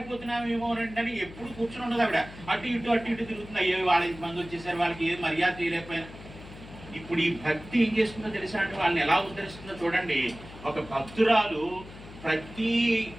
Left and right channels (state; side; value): noise; left; hum, 16 dB below the sound